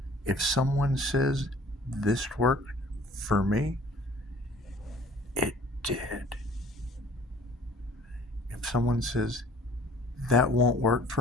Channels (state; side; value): normal; both; correlation 0.52